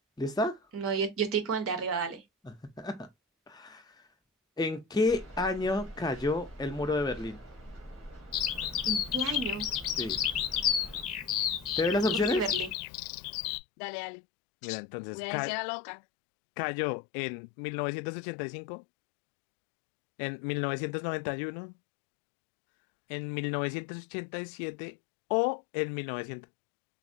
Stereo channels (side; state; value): right; drops out; at 12.8 s